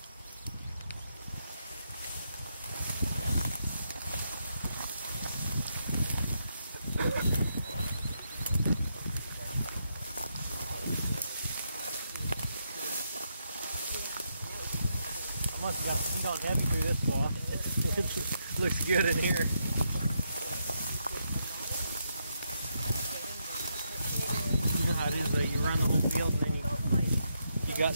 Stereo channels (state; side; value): inverted; both; correlation -0.81